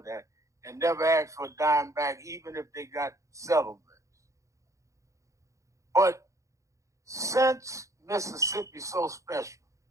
that, and never ask for a dime back, even if they got settlements. But since Mississippi's so special,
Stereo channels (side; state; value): left; late; 0.15 ms